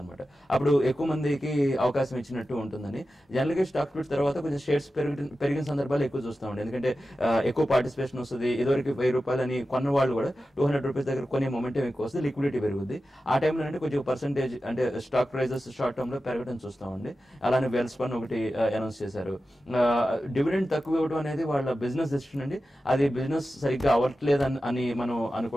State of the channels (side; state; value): both; normal; correlation 0.93